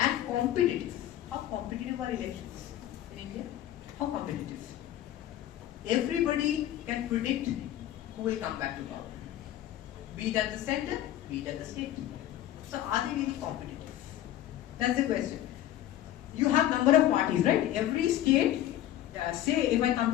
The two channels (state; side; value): quieter; right; 12.9 dB